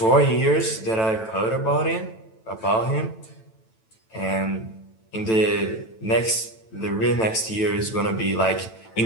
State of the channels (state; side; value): late; right; 9.1 ms